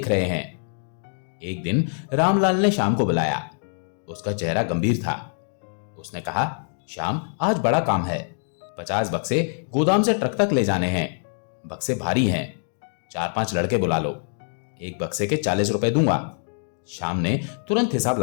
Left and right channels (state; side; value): silent; right; 58 dB below the other